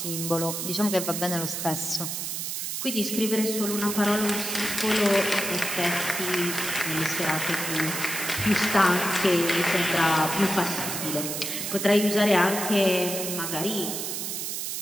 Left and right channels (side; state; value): right; noise; hiss, 3 dB below the sound